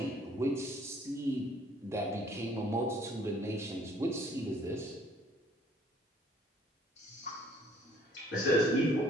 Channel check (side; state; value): both; normal; correlation 0.58